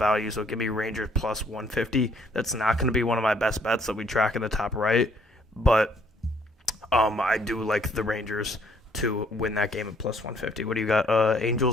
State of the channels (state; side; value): normal; both; correlation 0.65